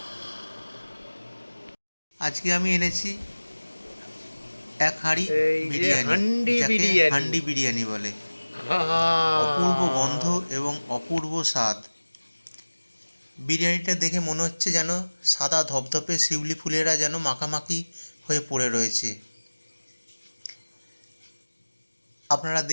আজকে আমি এনেছি এক হাঁড়ি এই যে বিরিয়ানি, হান্ডি যাকে বিরিয়ানি। হান্ডি বিরিয়ানি বলে। আহা! অপূর্ব গন্ধ এবং অপূর্ব স্বাদ। বিরিয়ানিটা দেখে মনে হচ্ছে যেন সাদা ধপধপে শিউলি ফুলেরা যেন মাখামাখি হয়ে পড়ে রয়েছে। আপনারা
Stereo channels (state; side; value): inverted; both; correlation -1.00